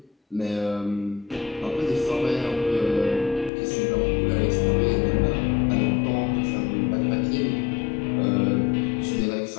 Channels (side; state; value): right; drops out; at 3.5 s